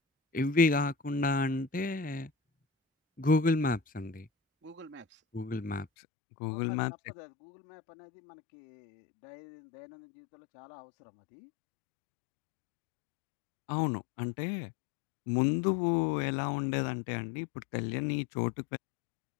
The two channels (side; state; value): right; drops out; at 5.9 s